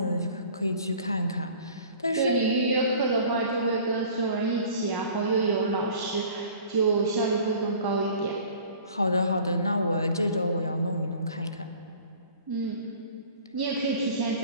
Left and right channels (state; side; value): inverted; both; correlation -0.47